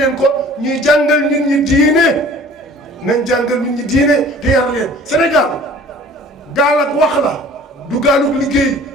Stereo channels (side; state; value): both; normal; correlation 0.48